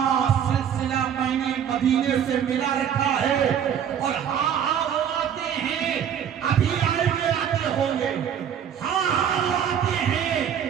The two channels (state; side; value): quieter; left; 8.7 dB